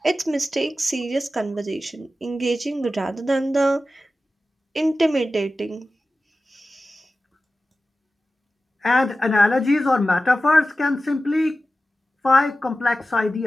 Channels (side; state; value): both; normal; correlation 0.94